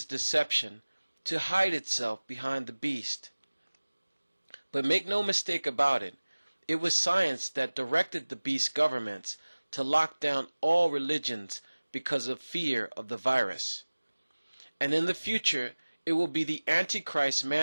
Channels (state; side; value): inverted; both; correlation -1.00